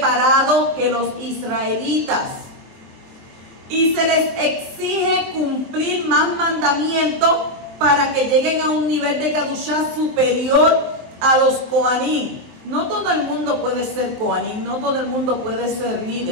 que los israelitas. Y se les exige cumplir más mandamientos para que lleguen a un nivel de Kadushá superior a los Kohanim. No todo el mundo puede ser Kohanim, no todo el mundo puede ser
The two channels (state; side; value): late; left; 23 ms